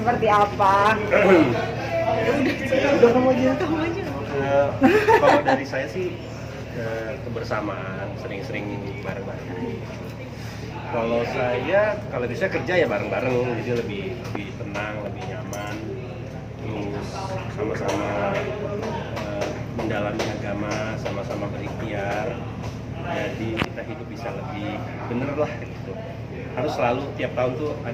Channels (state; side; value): identical; both; correlation 1.00